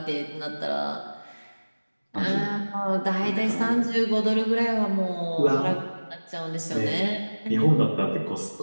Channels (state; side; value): inverted; both; correlation -1.00